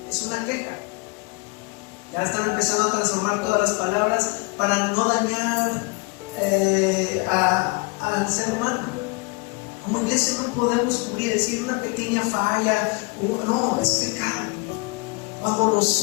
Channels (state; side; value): quieter; right; 28.7 dB